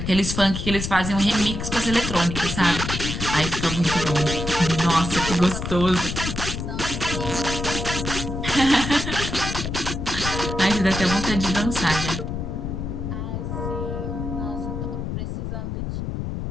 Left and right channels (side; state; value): left; noise; rumble, 4 dB below the sound